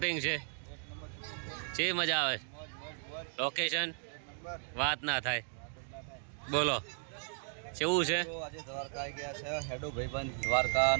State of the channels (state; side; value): silent; left; 54 dB below the other